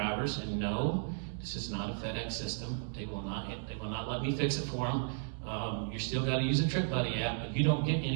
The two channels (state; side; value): silent; left; digital silence